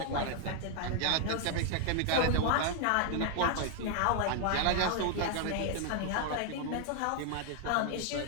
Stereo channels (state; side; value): different; both; correlation 0.00